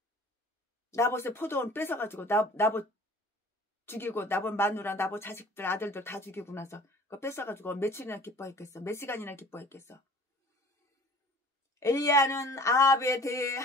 나봇의 포도원 뺏어가지고 나봇 죽이고 나봇 마누라 나봇 자식들 아들들 다 죽이고 나서 그거 뺏어가지고 며칠이나 기뻐했겠어? 몇 시간이나 기뻐했겠어? 엘리야는 아합에 대해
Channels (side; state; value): both; normal; correlation 0.48